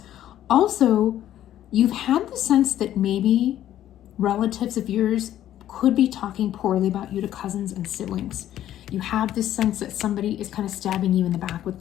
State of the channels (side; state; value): right; quieter; 12.1 dB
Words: Also, you've had the sense that maybe relatives of yours could be talking poorly about you to cousins and siblings. You have this sense that somebody is kind of stabbing you in the back with